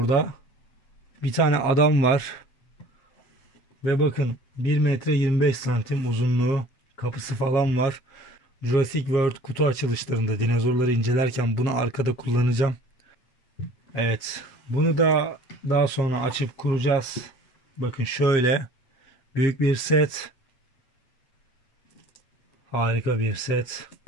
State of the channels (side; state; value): right; late; 8.0 ms